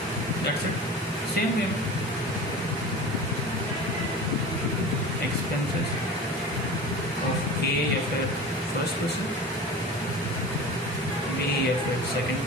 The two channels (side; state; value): both; normal; correlation 0.35